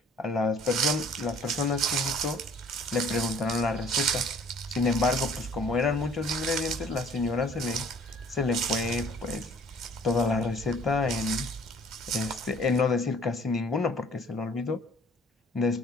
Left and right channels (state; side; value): normal; both; correlation 0.54